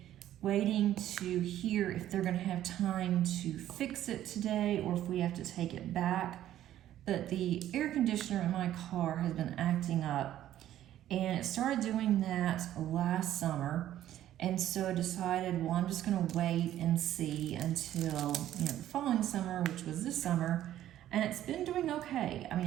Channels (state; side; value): quieter; left; 12.4 dB